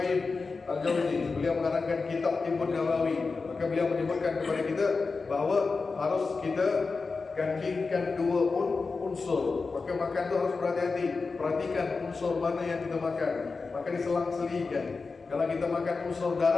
Al-Jauzi, beliau mengarangkan kitab Tibbun Nabawi. Maka beliau menyebutkan kepada kita bahawa harus kita gandingkan 2 unsur. Maka makan itu harus berhati-hati, perhatikan unsur mana yang kita makan. Maka diselang-selingkan. Kalau kita makan unsur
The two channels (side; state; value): right; quieter; 4.3 dB